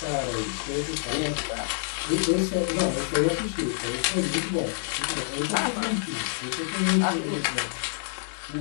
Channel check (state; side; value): silent; right; digital silence